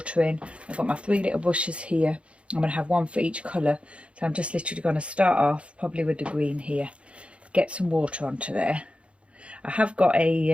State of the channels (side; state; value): left; late; 0.060 ms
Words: in. I've got my 3 little bushes here. I'm going to have one for each colour. So I'm just literally going to start off probably with the green here. Get some water onto there. I have got